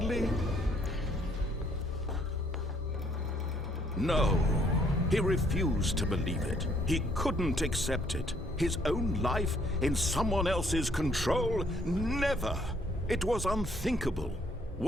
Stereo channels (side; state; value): both; normal; correlation 0.66